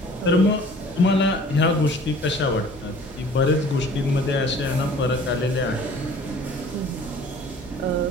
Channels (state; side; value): normal; both; correlation 0.49